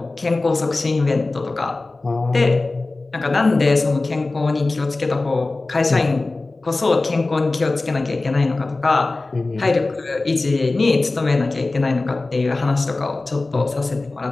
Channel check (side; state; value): right; quieter; 3.3 dB